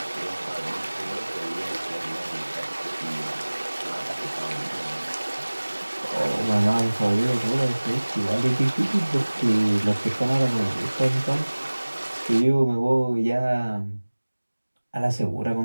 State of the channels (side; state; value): both; inverted; correlation -1.00